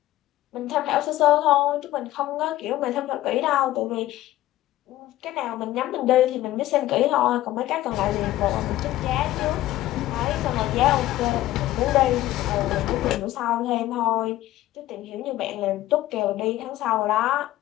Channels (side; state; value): right; quieter; 15.2 dB